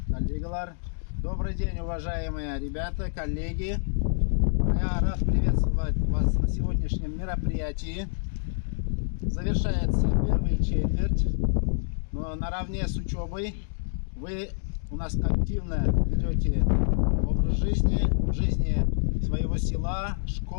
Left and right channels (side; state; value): right; silent; digital silence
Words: коллегалар. Добрый день, уважаемые ребята, коллеги. Я рад приветствовать вас на сегодняшнем мероприятии. Завершается первая четверть, но наравне с учебой вы у нас активно ведете образ жизни, в жизни своего села,